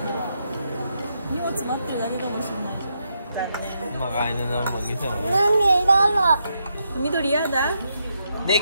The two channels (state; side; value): inverted; both; correlation -0.81